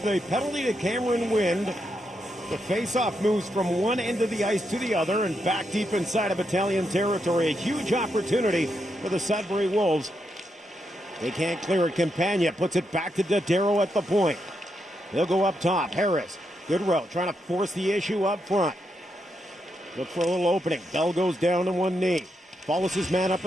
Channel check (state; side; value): normal; both; correlation 0.82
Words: the penalty to Cameron Wynn, the face-off moves from one end of the ice to the other and back deep inside of Battalion territory. A huge opportunity for the Sudbury Wolves. They can't clear it. Campagna puts it back to Dodero at the point. They'll go up top. Harris, good row, trying to force the issue up front. Look for a little opening. Bell goes down to one knee. Follows his man up